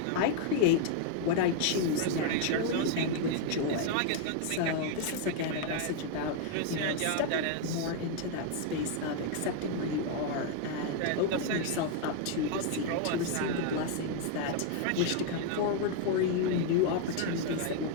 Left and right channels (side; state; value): both; different; correlation 0.00